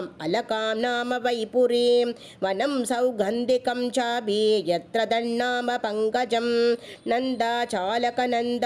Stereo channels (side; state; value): both; identical; correlation 1.00